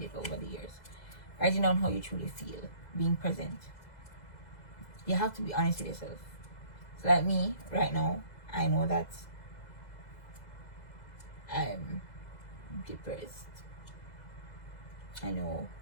over the years. Writing down how you truly feel. Being present. You have to be honest with yourself. So like me, right now, I know that I'm depressed. I know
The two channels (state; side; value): late; right; 2.0 ms